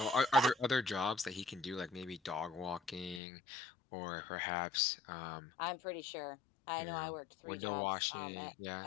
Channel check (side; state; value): right; drops out; at 3.2 s